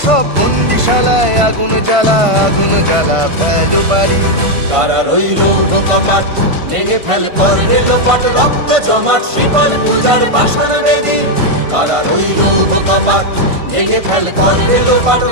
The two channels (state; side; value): late; left; 1.5 ms